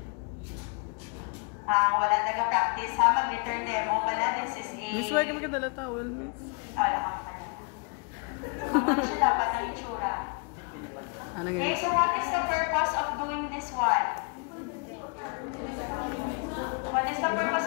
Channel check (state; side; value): quieter; right; 36.0 dB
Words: taga-practice ha, mag-return demo pala. This is a... Miss, why ka magkadala towel, miss? Wala ka pa na. Ano siya dapat ang itsura? Ano Okay, nga? so what is the purpose of doing this one? What is the purpose